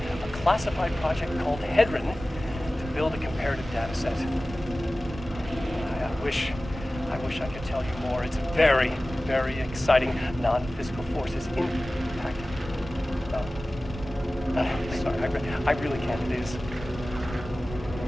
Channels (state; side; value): normal; both; correlation 0.96